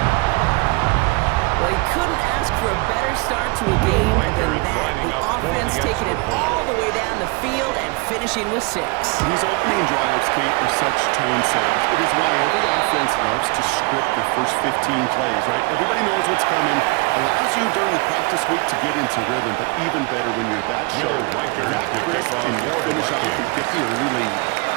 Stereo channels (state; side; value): quieter; left; 27.5 dB